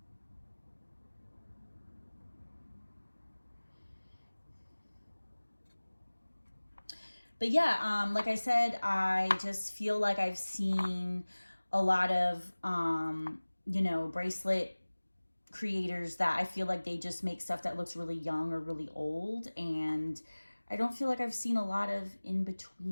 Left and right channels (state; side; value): inverted; both; correlation -1.00